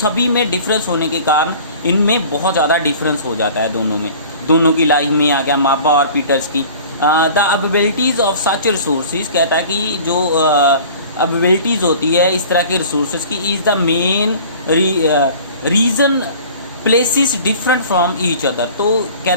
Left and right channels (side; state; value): both; inverted; correlation -0.45